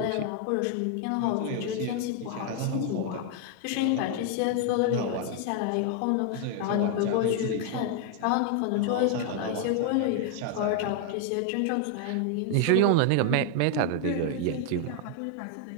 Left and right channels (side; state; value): both; different; correlation 0.00